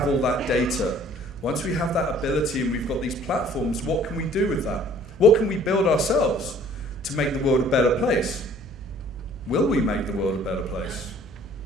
all that data, once we have that ability and we've got these platforms, what can we do with that? What can we build ourselves to make the world a better place? Will we make the world a better place?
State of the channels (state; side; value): normal; both; correlation 0.55